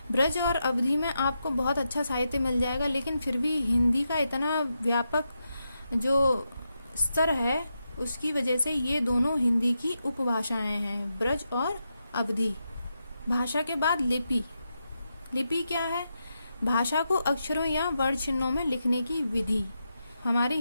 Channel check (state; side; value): inverted; both; correlation -0.86